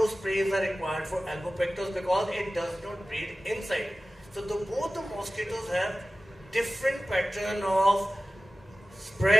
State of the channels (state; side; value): normal; both; correlation 0.96